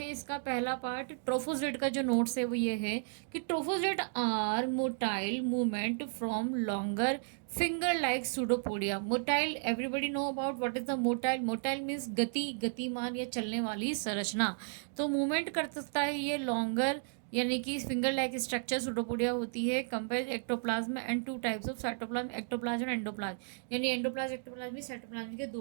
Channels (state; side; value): silent; left; digital silence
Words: इसका पहला पार्ट। ट्रोफोजेट का जो नोट्स है वो ये है कि trophozoite are motile movement from longer finger like pseudopodia. Motile, everybody know about what is the motile. Motile means गति, गतिमान या चलने वाली संरचना। तो मूवमेंट कर सकता है ये लॉन्गर यानी कि फिंगर लाइक स्ट्रक्चर सूडोपोडिया होती है। Compare ectoplasm and 2 types of cytoplasm, ectoplasm और एंडोप्लाज्म। यानी एंडोप्लाज्म एक्टोप्लाज्म में साइटोप्लाज्म के